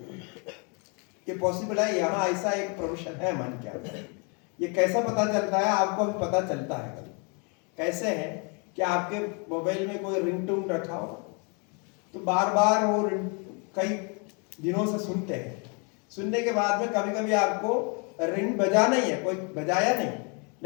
ये पॉसिबल है। यहाँ ऐसा एक प्रोफेशन है मन क्या, ये कैसा पता चलता है आपको? अभी पता चलता है कभी। कैसे है कि आपके मोबाइल में कोई रिंगटोन रखा हो, तो बार बार वो कई दिनों से सुनते हैं, सुनने के बाद में कभी कभी आपको रिंग बजाना ही है, कोई बजाया नहीं,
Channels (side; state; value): right; quieter; 34.8 dB